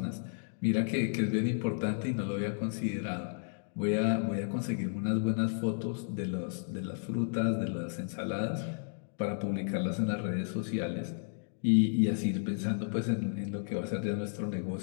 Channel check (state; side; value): silent; right; digital silence